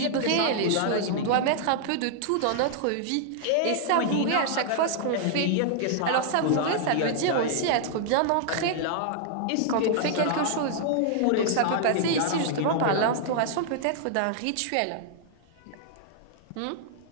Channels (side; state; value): both; different; correlation -0.01